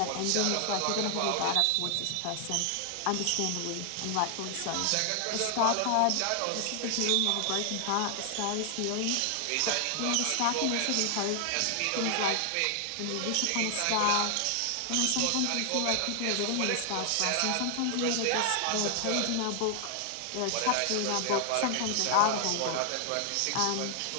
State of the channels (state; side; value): different; both; correlation 0.00